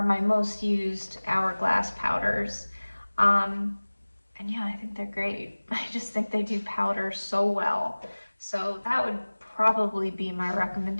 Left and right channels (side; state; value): both; inverted; correlation -1.00